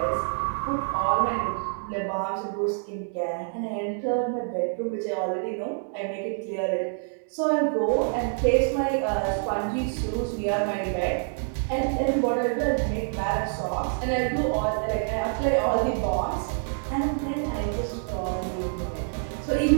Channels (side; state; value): left; silent; 60 dB below the other